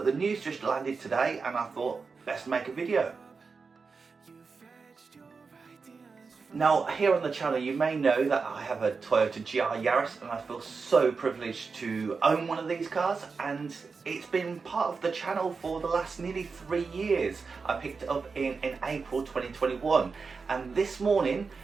the news just landed today and I thought, best make a video. Now, here on the channel you may know that I have a Toyota GR Yaris and I feel so privileged to own one of these cars, and it's been part of the channel for the last nearly 3 years. I picked it up in April 2021, and this morning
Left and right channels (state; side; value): quieter; left; 4.8 dB